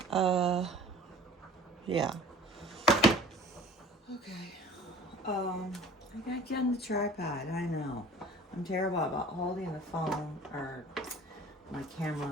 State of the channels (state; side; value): normal; both; correlation 0.45